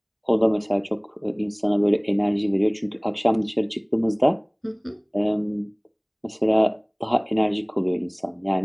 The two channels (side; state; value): both; identical; correlation 1.00